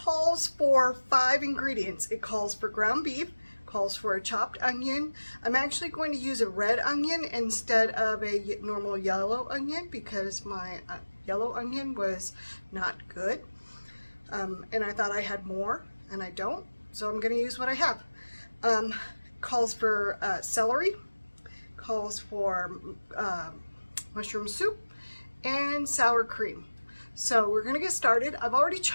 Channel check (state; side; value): inverted; both; correlation -1.00